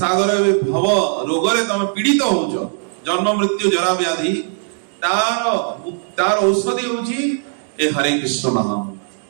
में भव रोग रे तमे पीड़ित होउछो जन्म मृत्यु जरा व्याधि तार औषधि होची ए हरे कृष्ण महामंत्र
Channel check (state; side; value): silent; left; 62 dB below the other